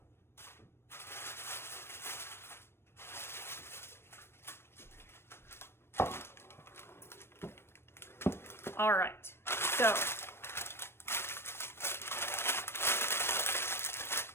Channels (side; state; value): right; late; 0.12 ms